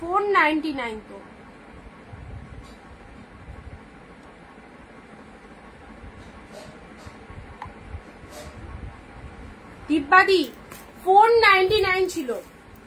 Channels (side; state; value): both; identical; correlation 1.00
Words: তো। দিব্যাদি 499 ছিল,